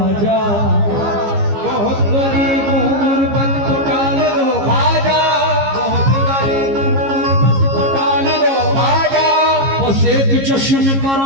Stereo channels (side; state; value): left; late; 15 ms